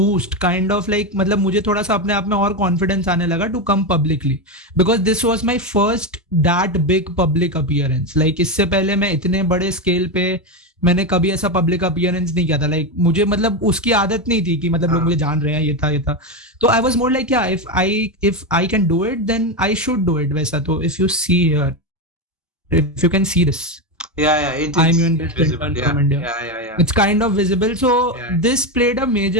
kind of like मतलब मुझे थोड़ा सा अपने आप में और confidence आने लगा to come publicly, because this was my first that big public appearance. Like इससे पहले मैं इतने बड़े scale पे मैंने कभी ऐसा public appearance नहीं किया था. Like मुझे मतलब उसकी आदत नहीं थी कि मतलब लोग मुझे जान रहे हैं, ये था. तो I was more like, yeah, if I can do it, then I should do it. वैसा. तो if you see here, if you can see this. It's visible. Yeah. It's kind of visible. So this played a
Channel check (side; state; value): both; normal; correlation 0.13